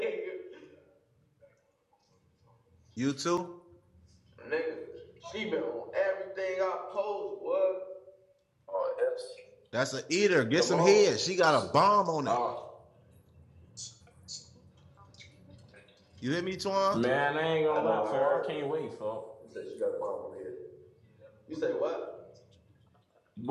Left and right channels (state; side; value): identical; both; correlation 1.00